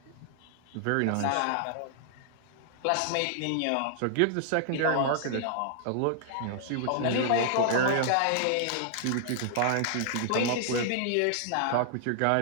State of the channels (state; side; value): different; both; correlation -0.01